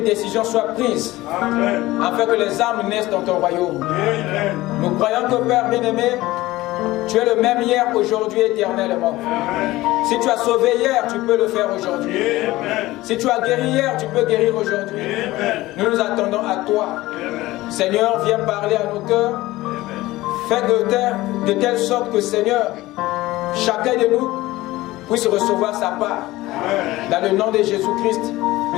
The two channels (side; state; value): right; quieter; 18.0 dB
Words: décision soit prise afin que les âmes naissent dans ton royaume. Nous croyons que Père bien-aimé, tu es le même hier, aujourd'hui, éternellement. Si tu as sauvé hier, tu peux le faire aujourd'hui. Si tu as guéri hier, tu peux guérir aujourd'hui. Nous nous attendons à toi. Seigneur, viens parler à nos cœurs. Fais de telle sorte que, Seigneur, chacun de nous puisse recevoir sa part. Dans le nom de Jésus-Christ,